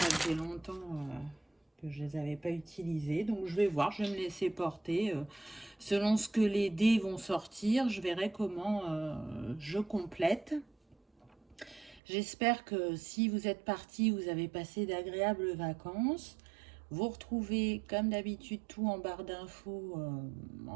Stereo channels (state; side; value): drops out; left; at 12.0 s